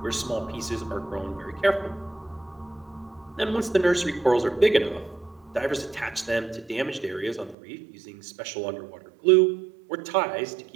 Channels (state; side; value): drops out; left; at 7.6 s